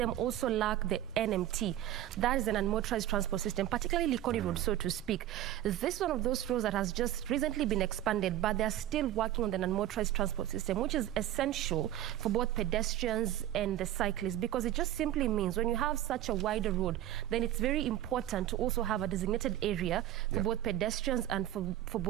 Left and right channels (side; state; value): left; quieter; 13.0 dB